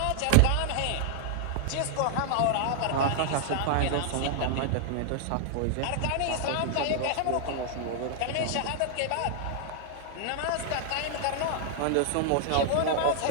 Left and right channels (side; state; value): both; different; correlation 0.00